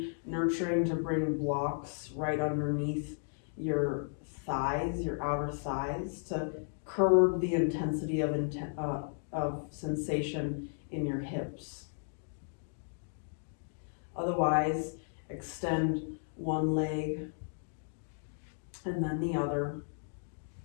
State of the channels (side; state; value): right; silent; digital silence